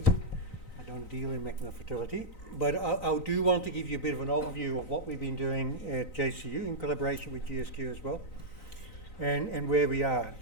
I don't deal in magma fertility. But I do want to give you a bit of an overview of what we've been doing at JCU in collaboration with GSQ as well, and where we are.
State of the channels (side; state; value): right; late; 3.9 ms